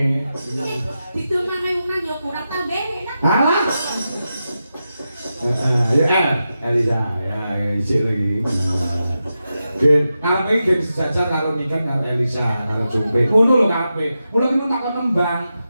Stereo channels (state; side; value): inverted; both; correlation -0.90